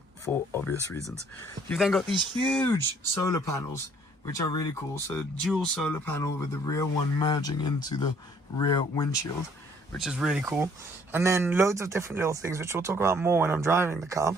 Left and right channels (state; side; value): normal; both; correlation 0.61